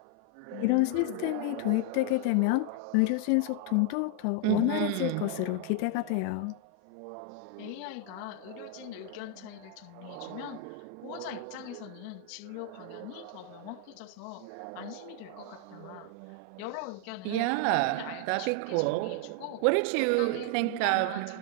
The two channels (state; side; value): different; both; correlation 0.00